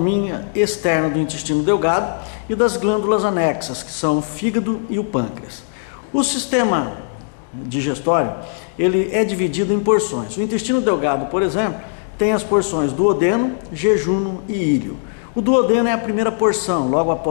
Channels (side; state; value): right; silent; digital silence